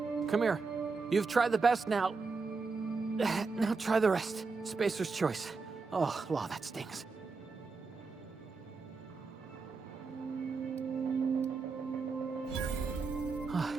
come here. You've tried the best now. Now try the rest. Spacer's choice. Oh, law, that stings.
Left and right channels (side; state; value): left; quieter; 4.5 dB